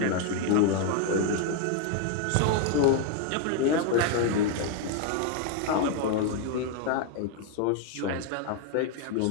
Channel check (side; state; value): both; different; correlation 0.01